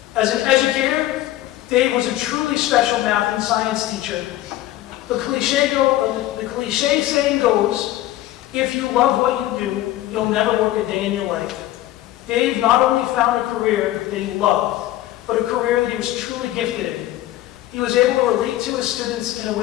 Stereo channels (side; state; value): right; quieter; 14.8 dB